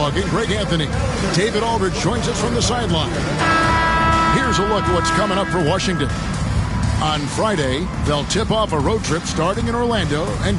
and Greg Anthony. David Aldridge joins us from the sideline. Here's a look at what's coming up for Washington. On Friday, they'll tip off a road trip starting in Orlando and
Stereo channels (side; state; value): both; identical; correlation 1.00